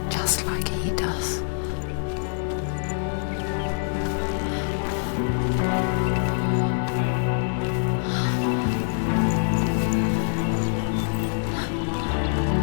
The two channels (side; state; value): right; silent; digital silence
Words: just like he does.